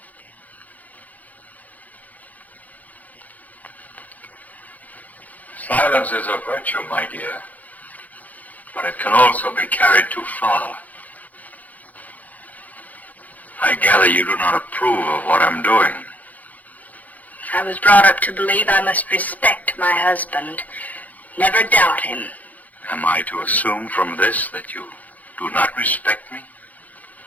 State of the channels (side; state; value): right; late; 0.078 ms